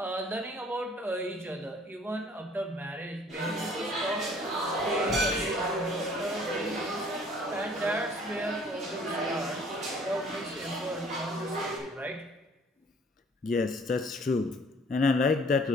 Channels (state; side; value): normal; both; correlation 0.56